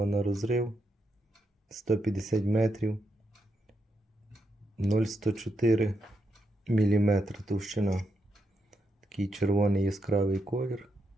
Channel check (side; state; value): both; normal; correlation 0.82